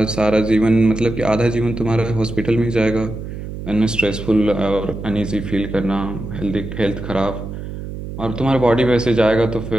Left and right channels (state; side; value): noise; right; hum, 9 dB below the sound